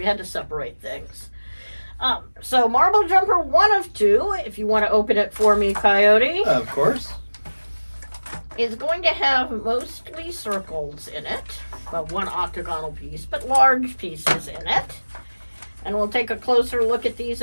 had to separate things. So Marble Jumper 1 of 2, if you want to open it for me, Coyote. Of course. Is going to have mostly circles in it. Well, one octagonal piece, but large pieces in it. And we'll take a closer look at these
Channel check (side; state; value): both; inverted; correlation -1.00